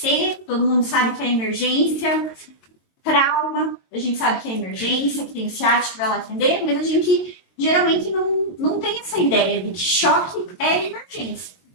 todo mundo sabe que é emergência. Trauma, a gente sabe que é emergência, que tem ciático que vai lá atender, mas a gente geralmente não tem essa ideia de que choque é emergência,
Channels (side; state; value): right; late; 22 ms